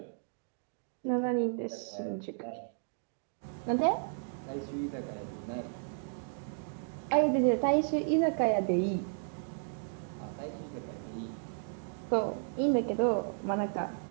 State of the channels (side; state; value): left; silent; digital silence